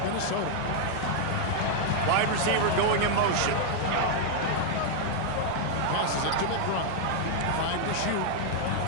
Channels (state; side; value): different; both; correlation 0.00